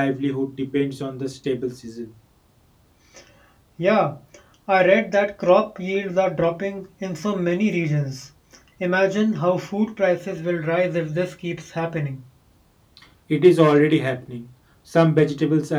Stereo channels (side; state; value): both; identical; correlation 1.00